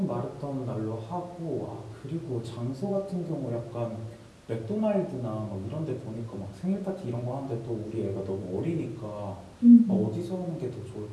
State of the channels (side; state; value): both; identical; correlation 1.00